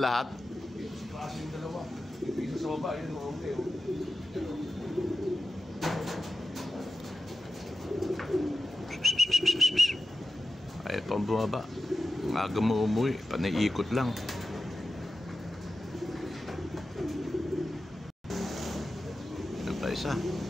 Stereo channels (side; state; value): both; normal; correlation 0.92